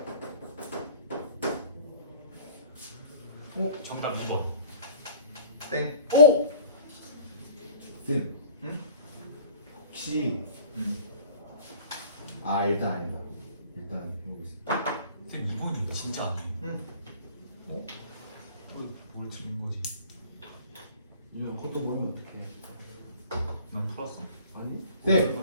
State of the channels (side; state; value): both; inverted; correlation -0.45